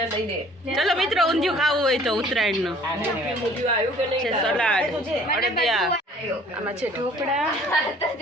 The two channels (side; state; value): both; normal; correlation 0.54